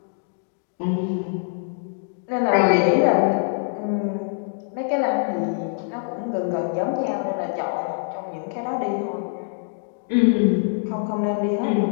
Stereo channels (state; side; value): silent; right; 63 dB below the other